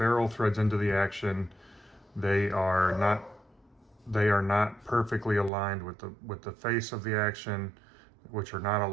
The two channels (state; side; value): drops out; left; at 5.5 s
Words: threads into the action. They are not perfectly aligned with the face of the action, which are not